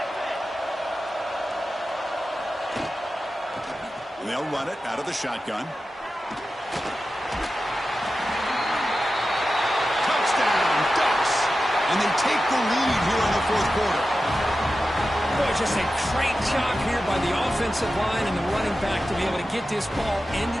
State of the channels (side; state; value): both; normal; correlation 0.93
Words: They'll run it out of the shotgun. Touchdown, Ducks. And they take the lead here in the 4th quarter. Boy, just a great job here by the offensive line and the running back to be able to get this ball into